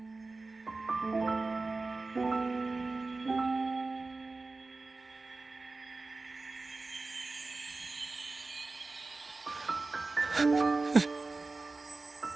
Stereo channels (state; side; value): quieter; left; 3.6 dB